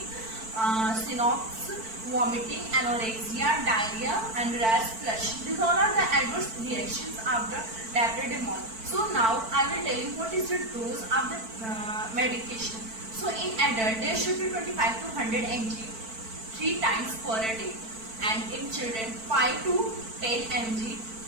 synopsis, vomiting, anorexia, diarrhea, and rash, flush. These all are the adverse reactions of the dipyridamole. So now I will tell you what is the dose of the medication. So in adult there should be 25 to 100 mg 3 times per day, and in children 5 to 10 mg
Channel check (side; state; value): left; late; 4.5 ms